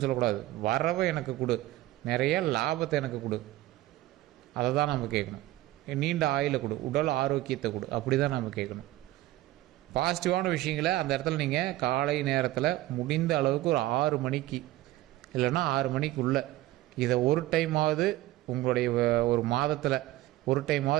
சொல்லக்கூடாது. வரவை எனக்கு கொடு, நிறைய லாபத்தை எனக்கு கொடு, அதை தான் நம்ம கேட்கணும். நீண்ட ஆயுளை கொடு, உடல் ஆரோக்கியத்தை கொடு, அப்படி தான் நம்ம கேட்கணும். பாசிட்டிவான விஷயங்களை அந்த இடத்துல நீங்கள் காலை நேரத்தில் முடிந்த அளவுக்கு ஒரு 6 மணிக்கு இல்லைன்னா 6 மணிக்குள்ளே இதை ஒரு டைமாவது உங்களுடைய ஒரு மாதத்தில் ஒரு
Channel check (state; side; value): quieter; left; 16.4 dB